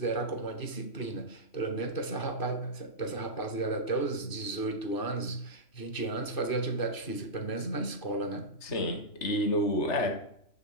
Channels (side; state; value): right; late; 3.0 ms